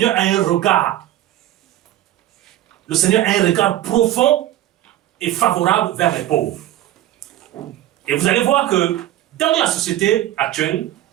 a un regard. Le Seigneur a un regard profond et favorable vers les pauvres. Et vous allez voir que dans la société actuelle,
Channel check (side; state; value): left; quieter; 13.6 dB